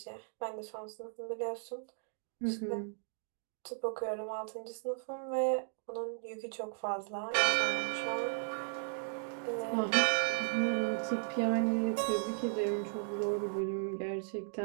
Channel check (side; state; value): left; silent; digital silence